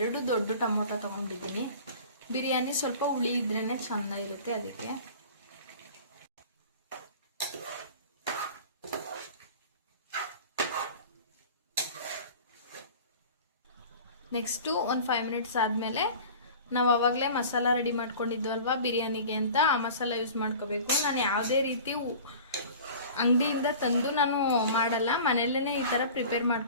2 ದೊಡ್ಡ ಟೊಮೊಟೊ ತಗೊಂಡಿದ್ದೀನಿ. ಬಿರಿಯಾನಿ ಸ್ವಲ್ಪ ಹುಳಿ ಇದ್ರೇನೆ ಚೆನ್ನಾಗಿರುತ್ತೆ, ಅದಕ್ಕೆ. ನೆಕ್ಸ್ಟು ಒಂದು 5 ಮಿನಿಟ್ಸ್ ಆದಮೇಲೆ ನಾವು ಆವಾಗಲೇ ಮಸಾಲ ರೆಡಿ ಮಾಡ್ಕೊಂಡಿದ್ವಲ್ವಾ ಬಿರಿಯಾನಿಗೆ ಅಂತ, ಆ ಮಸಾಲ ಯೂಸ್ ಮಾಡ್ಕೋಬೇಕು. ನಾನು ಯಾವುದೇ ರೀತಿ ಅಂಗಡಿಯಿಂದ ತಂದು ನಾನು ಮಾಡಲ್ಲ, ಮನೆಯಲ್ಲೇ ಈ ಥರ ಪ್ರಿಪೇರ್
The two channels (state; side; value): inverted; both; correlation -0.40